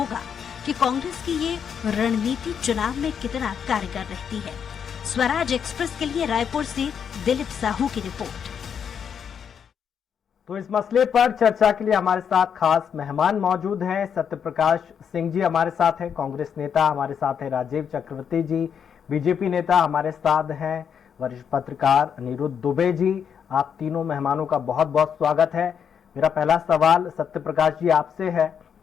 कि कांग्रेस की ये रणनीति चुनाव में कितना कारगर रहती है। स्वराज एक्सप्रेस के लिए रायपुर से दिलीप साहू की रिपोर्ट। तो इस मसले पर चर्चा के लिए हमारे साथ खास मेहमान मौजूद हैं। सत्यप्रकाश सिंह जी हमारे साथ हैं, कांग्रेस नेता हमारे साथ हैं राजीव चक्रवर्ती जी, बीजेपी नेता हमारे साथ हैं वरिष्ठ पत्रकार अनिरुद्ध दुबे जी। आप तीनों मेहमानों का बहुत बहुत स्वागत है। मेरा पहला सवाल सत्यप्रकाश जी आपसे है।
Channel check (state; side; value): quieter; right; 7.6 dB